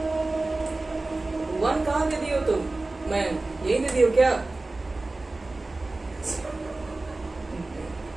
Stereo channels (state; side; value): quieter; left; 3.1 dB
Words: 1 कहाँ दे दियो तुम, मैं यही दे दियो क्या?